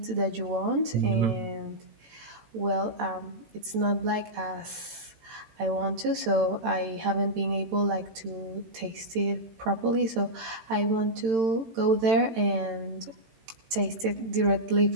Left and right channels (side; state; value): left; late; 18 ms